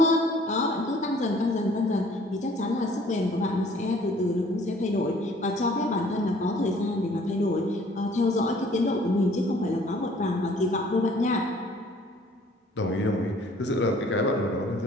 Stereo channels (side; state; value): both; normal; correlation 0.56